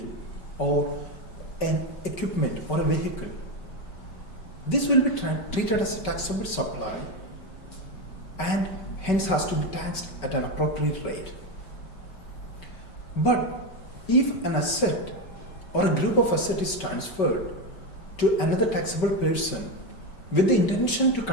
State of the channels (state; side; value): late; right; 5.2 ms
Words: or an equipment or a vehicle, this will be treated as a taxable supply and hence has to be taxed at an appropriate rate. But if an asset or a group of assets is transferred to another taxable person with the intention to